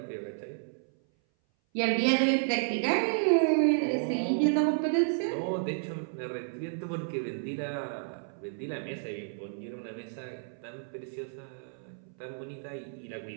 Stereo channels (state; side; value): silent; left; 57 dB below the other